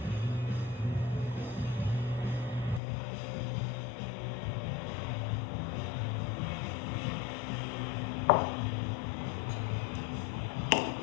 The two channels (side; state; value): right; drops out; at 2.8 s